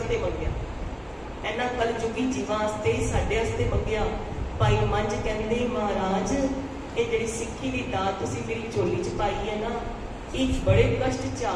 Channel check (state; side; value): identical; both; correlation 1.00